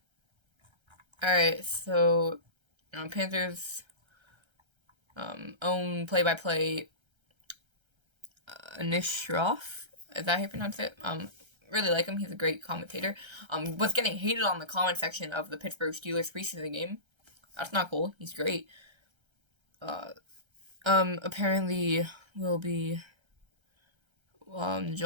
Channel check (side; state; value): left; late; 1.3 ms